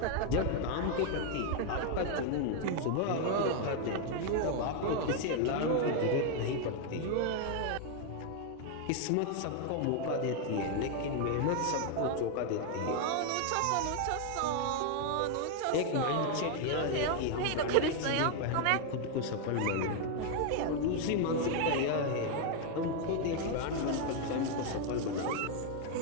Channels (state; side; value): different; both; correlation 0.00